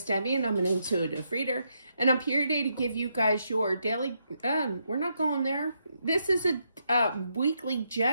Debbie and I'm an intuitive reader, and I'm here today to give you guys your daily, we're not going there. This is a weekly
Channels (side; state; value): both; inverted; correlation -0.79